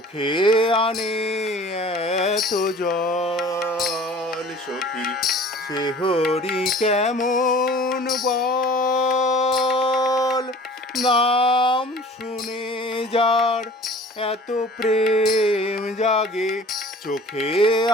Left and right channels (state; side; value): normal; both; correlation 0.46